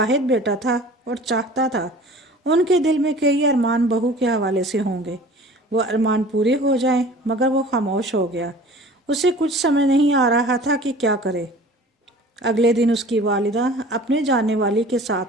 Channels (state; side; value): normal; both; correlation 0.45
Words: بیٹا تھا اور چاہتا تھا ان کے دل میں کئی ارمان بہو کے حوالے سے ہوں گے، وہ ارمان پورے ہو جائیں، مگر وہ خاموش ہو گیا۔ اسے کچھ سمجھ نہیں آ رہا تھا کہ کیا کرے۔ اگلے دن اس کی والدہ اپنے جاننے والی کے